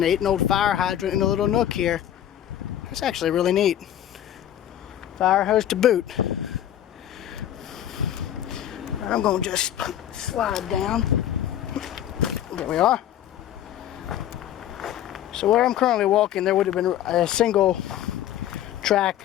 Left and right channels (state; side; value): quieter; right; 11.3 dB